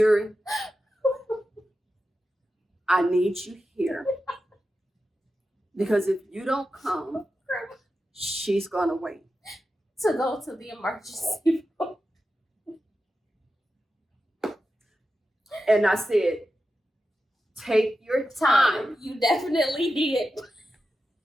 I need you here. Because if you don't come, she's going to wait. To go to the emergency room. And I said, take your time. You definitely did.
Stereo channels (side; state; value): both; normal; correlation 0.91